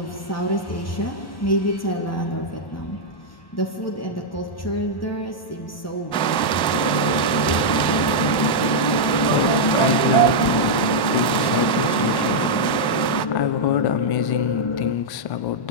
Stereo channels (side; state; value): right; late; 1.1 ms